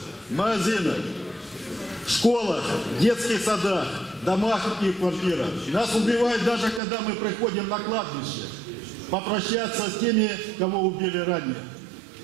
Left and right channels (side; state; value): left; drops out; at 6.8 s